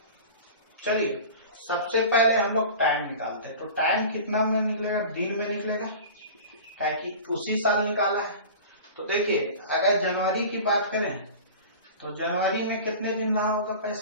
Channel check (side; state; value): both; inverted; correlation -0.36